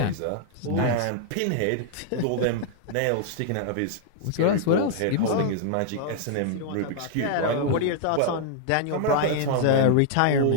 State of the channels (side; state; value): both; different; correlation -0.01